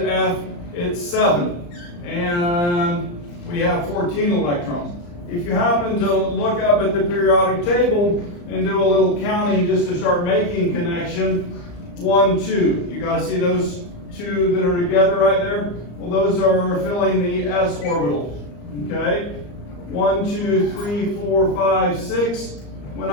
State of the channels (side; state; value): right; late; 34 ms